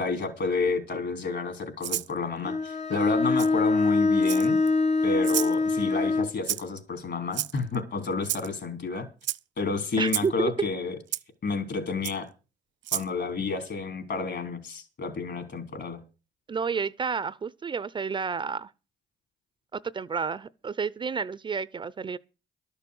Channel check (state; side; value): normal; both; correlation 0.51